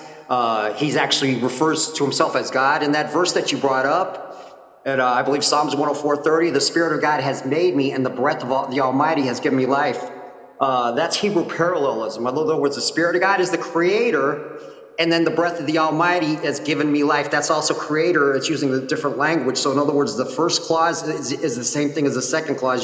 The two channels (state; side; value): identical; both; correlation 1.00